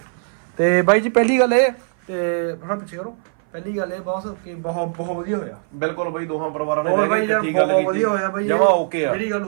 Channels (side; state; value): left; silent; 58 dB below the other